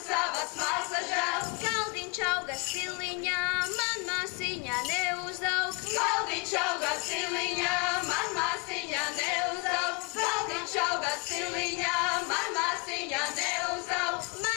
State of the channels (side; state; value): right; quieter; 30.4 dB